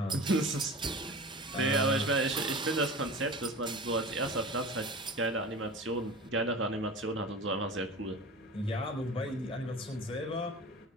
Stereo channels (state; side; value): normal; both; correlation 0.35